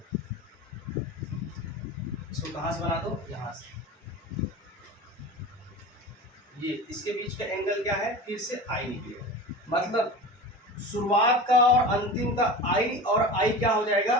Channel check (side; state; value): both; normal; correlation 0.32